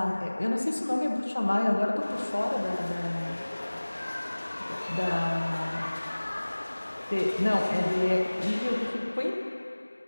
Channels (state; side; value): inverted; both; correlation -1.00